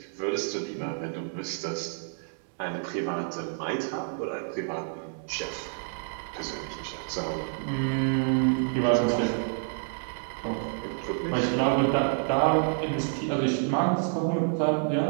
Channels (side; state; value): left; silent; digital silence